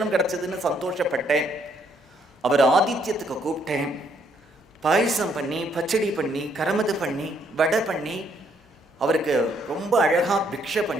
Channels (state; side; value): normal; both; correlation 0.70